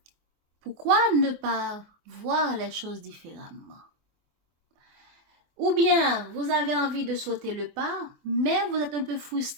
Pourquoi ne pas voir les choses différemment? Ou bien, vous avez envie de sauter le pas, mais vous êtes un peu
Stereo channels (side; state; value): left; late; 24 ms